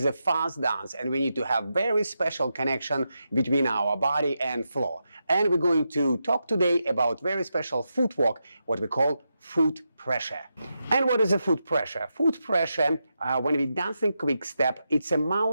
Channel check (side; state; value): both; inverted; correlation -0.87